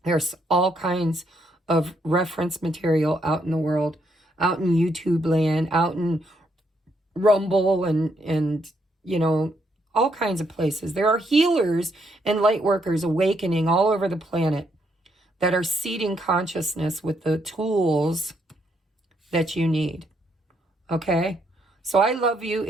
There's all kinds of reference material out in the world, out in YouTube land, out in Rumble and all kinds of places. There are healers and light workers awakening all over the planet that are seeding consciousness with the tools that you need. Okay? So I love you.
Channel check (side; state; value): both; normal; correlation 0.75